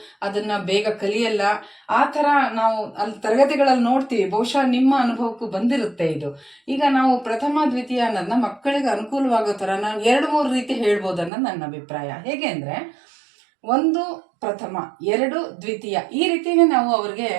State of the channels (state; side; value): drops out; left; at 11.3 s